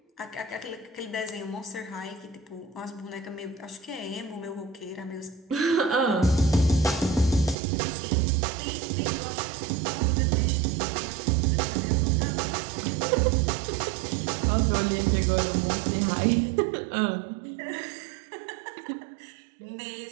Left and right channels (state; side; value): drops out; left; at 7.6 s